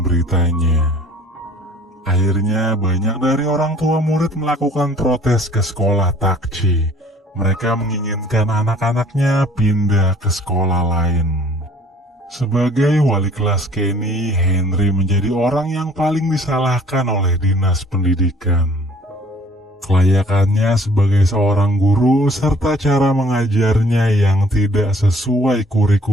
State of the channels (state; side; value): normal; both; correlation 0.54